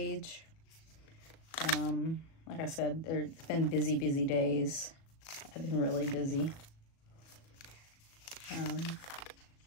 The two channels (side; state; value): right; late; 37 ms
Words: Like I said, it's been busy days. I've been really busy.